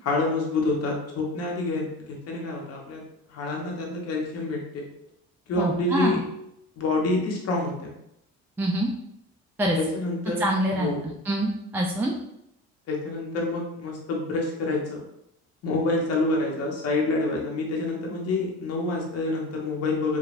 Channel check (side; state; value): both; normal; correlation 0.36